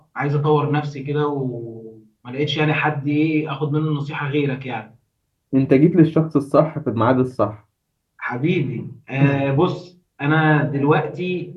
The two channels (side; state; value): both; identical; correlation 1.00